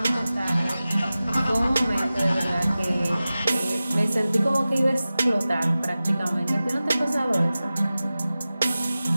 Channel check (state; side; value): inverted; both; correlation -0.95